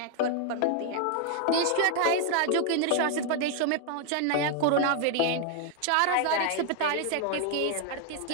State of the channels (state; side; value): different; both; correlation 0.00